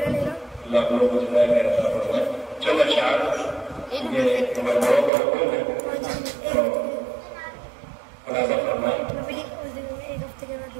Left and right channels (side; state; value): left; drops out; at 5.1 s